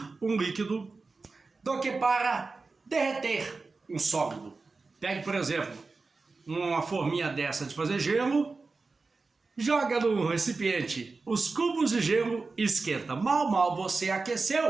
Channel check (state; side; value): quieter; left; 4.0 dB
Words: um líquido do que para derreter um sólido? Pegue, por exemplo, uma forminha dessa de fazer gelo, joga no recipiente os cubos de gelo e esquenta. Mal você